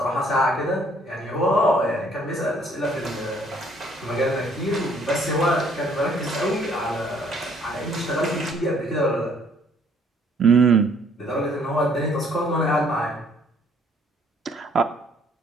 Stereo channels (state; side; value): normal; both; correlation 0.62